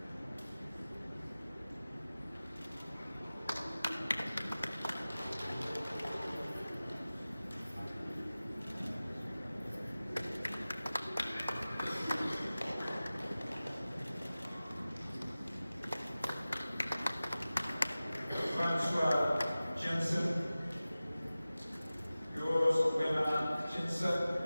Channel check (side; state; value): both; inverted; correlation -0.97